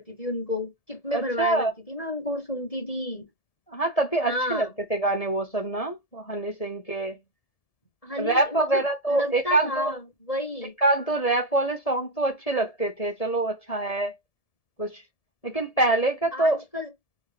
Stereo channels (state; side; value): late; right; 1.7 ms